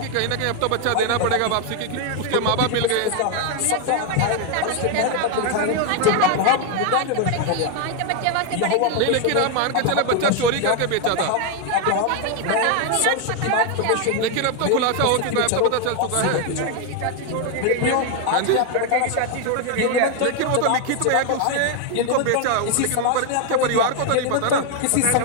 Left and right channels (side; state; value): both; different; correlation 0.01